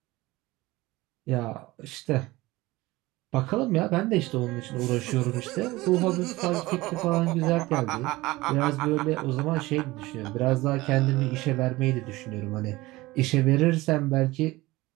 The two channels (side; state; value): left; quieter; 19.9 dB